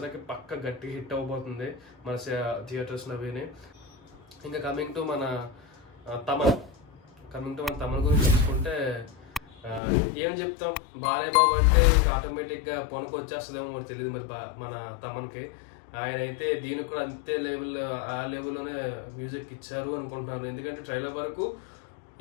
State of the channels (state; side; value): drops out; right; at 9.8 s